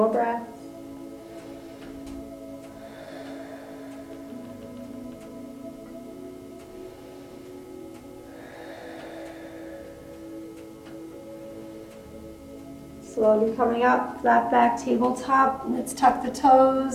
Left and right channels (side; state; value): both; identical; correlation 1.00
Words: breaths. Slowly coming up, flat back, tabletop. Let's tuck the